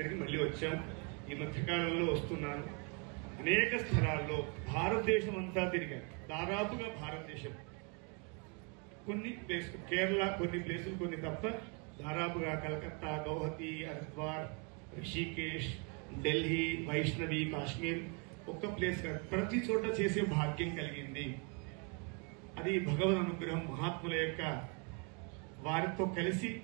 మళ్ళీ వచ్చాం. ఈ మధ్యకాలంలో వస్తున్నాను. అనేక స్థలాల్లో భారతదేశం అంతా తిరిగాను. దాదాపుగా భారతదేశం కొన్ని ప్లేసులు, కేరళ కొన్ని ప్లేసులు కొన్ని తప్ప దాదాపుగా కలకత్తా, గౌహతి, హరిద్వార్, రిషికేష్, ఢిల్లీ, వైష్ణవి, కాశ్మీర్ ఒక్క ప్లేస్ కాదు, ప్రతి చోట చేసే భాగ్యం కలిగింది. అది భగవద్ అనుగ్రహం, మహాత్ముల యొక్క వారితో కలిసి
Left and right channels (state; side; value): quieter; left; 33.5 dB